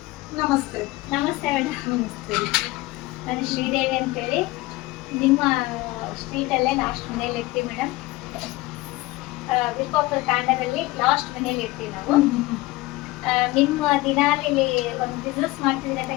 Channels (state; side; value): quieter; right; 20.0 dB